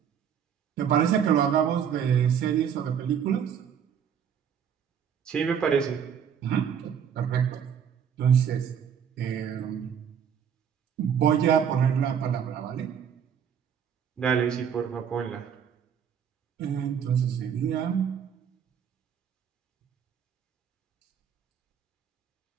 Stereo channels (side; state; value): left; quieter; 8.1 dB